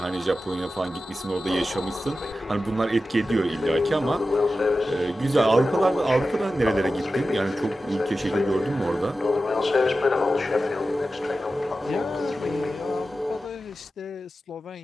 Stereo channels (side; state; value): both; normal; correlation 0.93